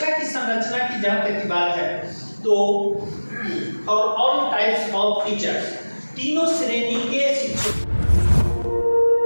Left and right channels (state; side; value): inverted; both; correlation -1.00